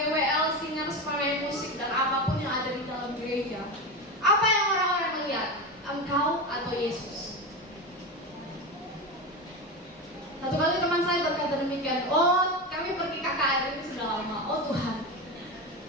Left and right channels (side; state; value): both; normal; correlation 0.20